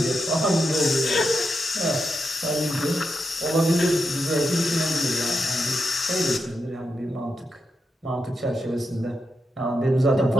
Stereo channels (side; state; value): both; normal; correlation 0.85